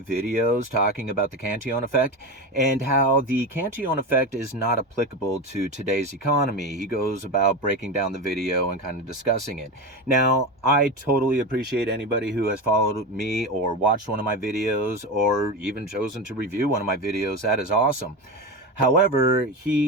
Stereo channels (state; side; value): normal; both; correlation 0.21